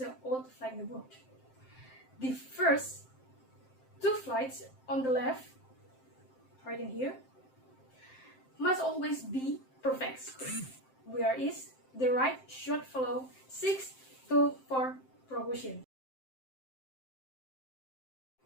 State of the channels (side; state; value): right; late; 7.6 ms